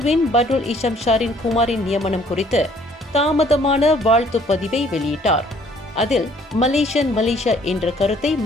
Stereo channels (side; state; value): both; normal; correlation 0.60